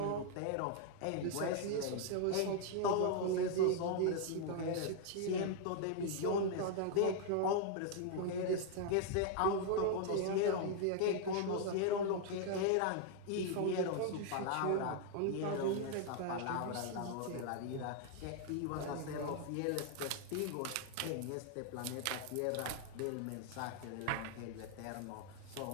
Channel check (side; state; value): both; different; correlation 0.00